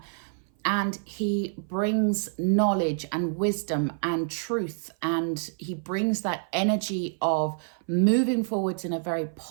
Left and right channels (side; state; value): left; silent; 57 dB below the other